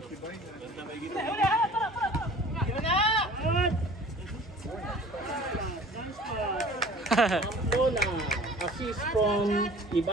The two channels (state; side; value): normal; both; correlation 0.47